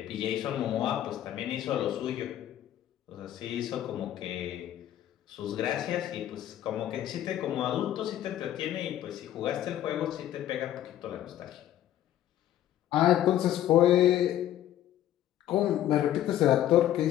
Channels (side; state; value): right; quieter; 12.2 dB